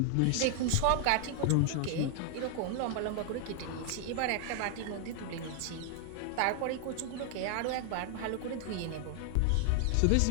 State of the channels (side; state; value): both; different; correlation 0.00